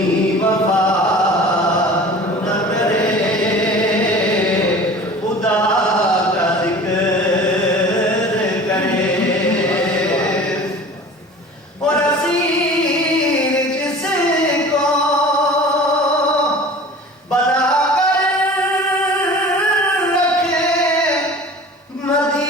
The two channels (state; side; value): normal; both; correlation 0.41